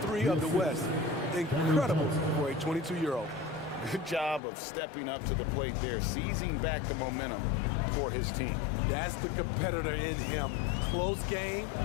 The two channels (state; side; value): drops out; right; at 4.4 s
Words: 3 of the West. Incredible for a 22-year-old. Good job of stepping up to the plate there, seizing back the momentum for his team. That's the competitor in him. Close game.